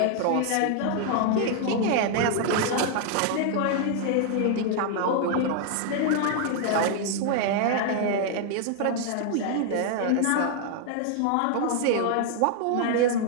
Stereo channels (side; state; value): both; different; correlation 0.00